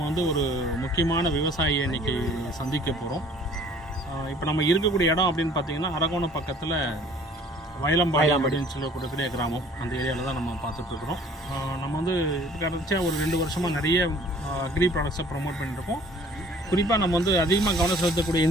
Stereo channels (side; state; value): both; normal; correlation 0.53